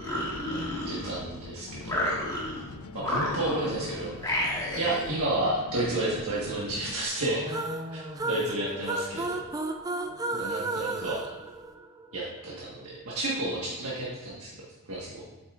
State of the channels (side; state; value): both; normal; correlation 0.10